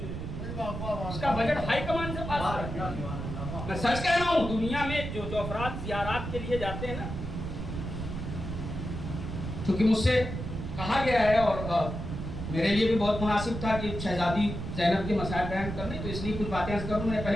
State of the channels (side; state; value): right; noise; rumble, 6 dB below the sound